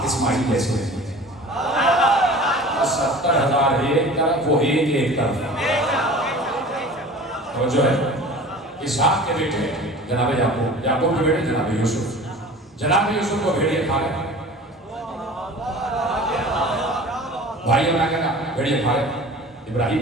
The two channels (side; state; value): both; normal; correlation 0.41